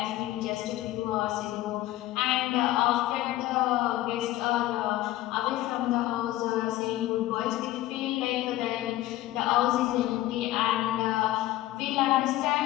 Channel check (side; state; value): right; quieter; 15.7 dB